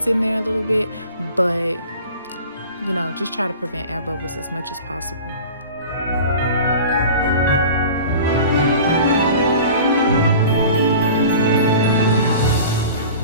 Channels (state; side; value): inverted; both; correlation -0.40